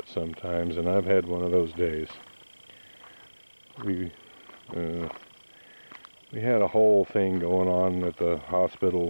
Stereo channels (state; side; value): inverted; both; correlation -1.00